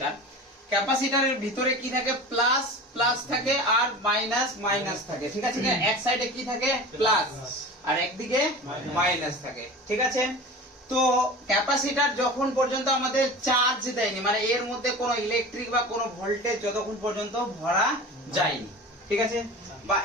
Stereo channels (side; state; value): both; normal; correlation 0.34